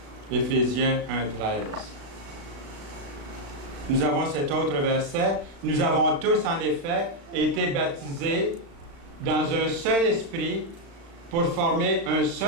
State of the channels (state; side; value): late; left; 35 ms